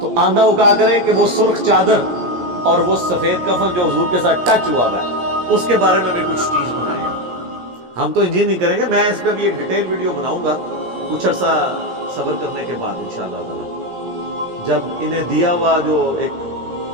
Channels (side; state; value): left; late; 17 ms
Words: تو آندہ وہ کہا کرے کہ وہ سرخ چادر اور وہ سفید کفن جو حضور کے ساتھ ٹچ ہوا ہے اس کے بارے میں بھی کچھ چیز بنائے. ہم تو انجین نہیں کریں گے، میں اس پہ بھی ایک ڈیٹیل ویڈیو بناؤں گا کچھ عرصہ صبر کرنے کے بعد انشاءاللہ تعالی جب انہیں دیا ہوا جو ایک